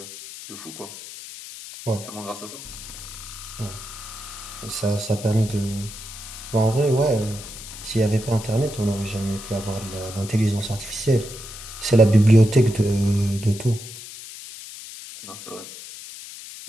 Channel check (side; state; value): left; noise; hiss, 13 dB below the sound